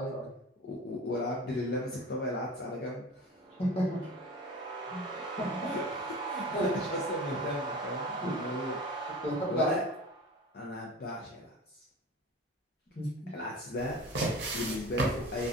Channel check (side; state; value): both; normal; correlation 0.36